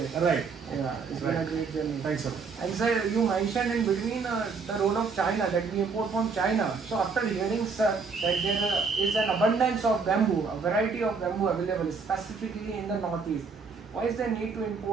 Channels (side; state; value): left; quieter; 4.9 dB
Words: Right. Yeah, it's been a great journey. Thanks, sir. And sir, you mentioned in between the role of China, that we import from China. So after hearing, sir, that there is an abundance of bamboo, a variety of bamboo available, specifically in the northeast, why is there need to